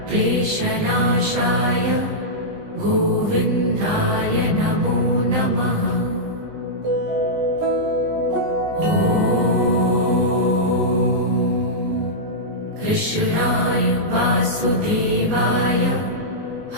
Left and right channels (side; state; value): left; late; 20 ms